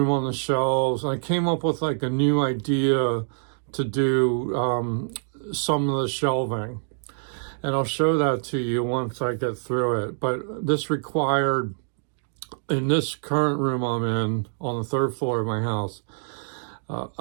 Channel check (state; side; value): silent; left; digital silence